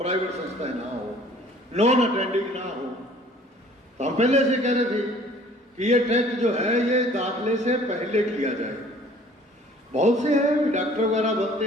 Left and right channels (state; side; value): normal; both; correlation 0.53